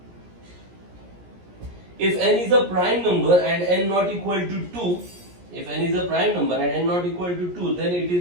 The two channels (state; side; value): late; left; 17 ms